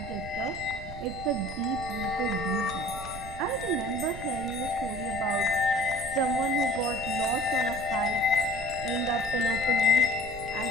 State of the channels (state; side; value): noise; right; rumble, 12 dB below the sound